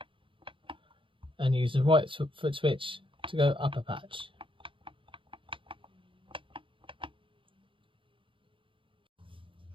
and use the right foot switch to go up a patch.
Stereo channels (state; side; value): late; left; 0.25 ms